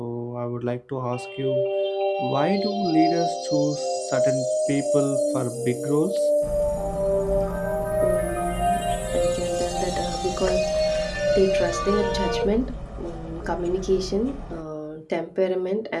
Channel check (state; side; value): identical; both; correlation 1.00